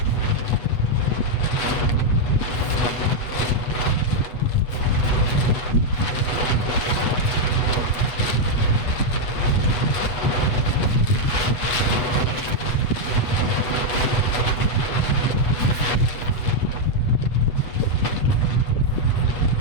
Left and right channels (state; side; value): late; right; 8.0 ms